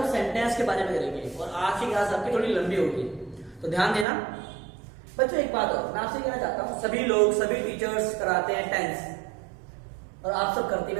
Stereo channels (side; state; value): left; drops out; at 4.0 s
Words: सेंटेंस के बारे में करेंगे और आज की क्लास आपकी थोड़ी लंबी होगी, तो ध्यान देना. बच्चों एक बात और मैं आपसे कहना चाहता हूं, सभी लोग सभी टीचर्स कराते हैं टेंस और आप सब करते